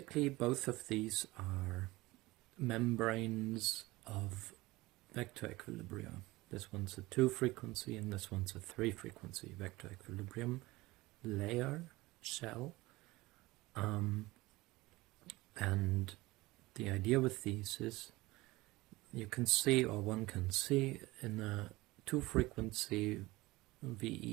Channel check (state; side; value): quieter; left; 20.2 dB